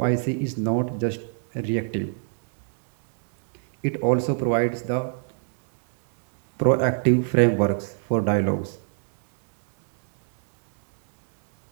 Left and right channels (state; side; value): silent; left; digital silence